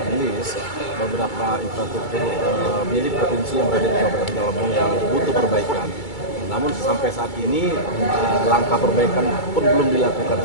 list beberapa infrastruktur milik provinsi yang berada di Kabupaten Rejang Lebong yang butuh perbaikan. Namun sampai saat ini langkah perbaikan pun belum dilakukan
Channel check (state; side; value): late; right; 2.3 ms